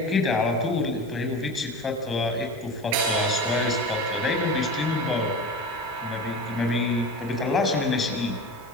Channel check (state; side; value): normal; both; correlation 0.30